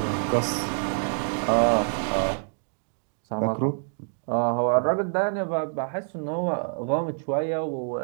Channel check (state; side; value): silent; left; digital silence